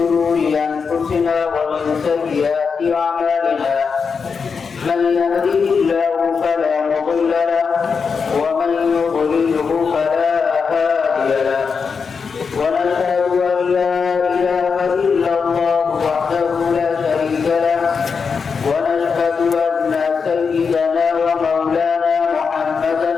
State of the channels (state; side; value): quieter; right; 5.6 dB